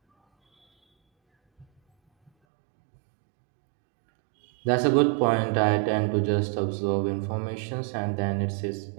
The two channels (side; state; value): left; drops out; at 2.3 s